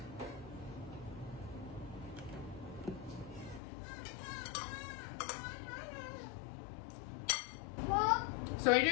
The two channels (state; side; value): drops out; right; at 3.6 s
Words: So when you're